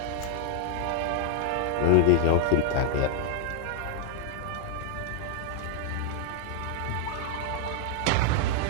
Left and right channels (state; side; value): different; both; correlation 0.00